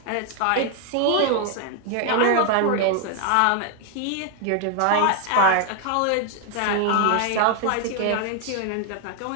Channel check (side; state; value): both; different; correlation 0.01